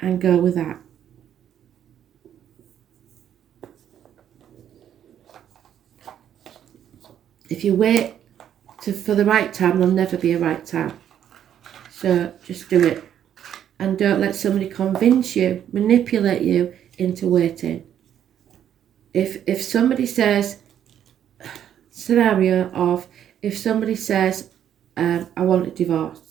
and go with that. If you wait for the right time, there'll never be a right time. So just do it. And don't let somebody convince you, manipulate you into waiting. If somebody says, scenario of, if somebody says, I want a divorce,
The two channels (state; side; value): quieter; left; 9.9 dB